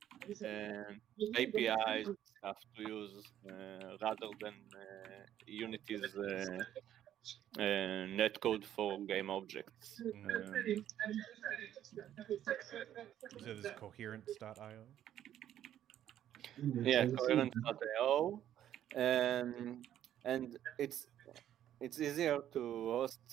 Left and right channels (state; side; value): quieter; left; 11.2 dB